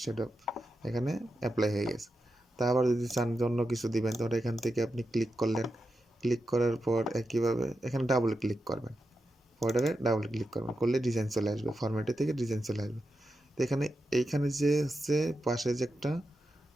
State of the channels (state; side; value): normal; both; correlation 0.89